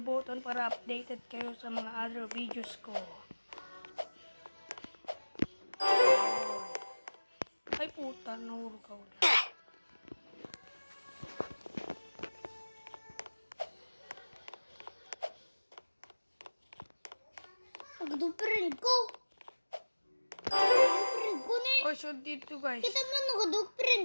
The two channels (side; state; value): both; inverted; correlation -1.00